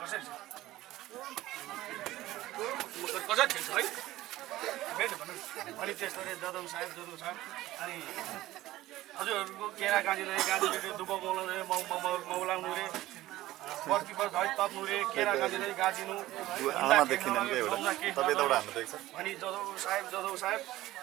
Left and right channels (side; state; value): left; quieter; 16.2 dB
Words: कसरी खेल्छ है भेट भनौँ अनि त्यस्तोले जदौ साहेब अनि हजुरहरूको केरा गाजीले दुबो मौलाउने मौलाउनु रे पर्किपर धै तप्नु रे केरा गाजीले गाजिनु अनि जदौ साहेब